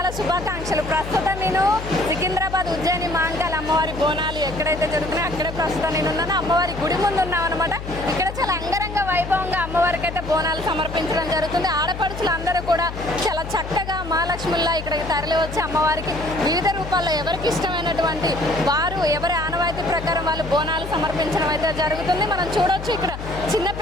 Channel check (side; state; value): left; noise; hum, 9 dB below the sound